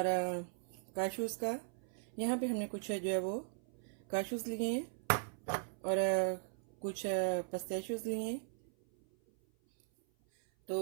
काशूज़ का। यहाँ पे हमने कुछ जो है वो काशूज़ लिए हैं और कुछ पिस्ताशियोज़ लिए हैं। तो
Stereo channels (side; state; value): left; silent; 52 dB below the other